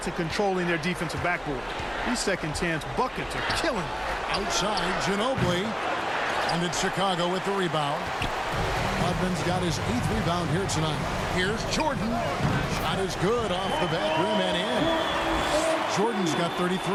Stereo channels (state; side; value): identical; both; correlation 1.00